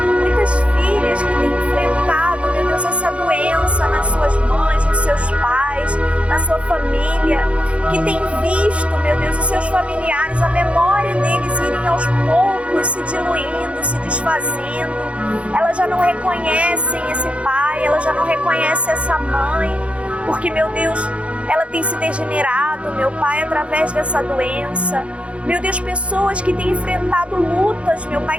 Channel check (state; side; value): late; left; 0.061 ms